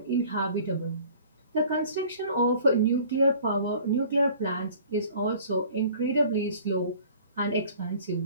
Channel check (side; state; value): both; inverted; correlation -0.50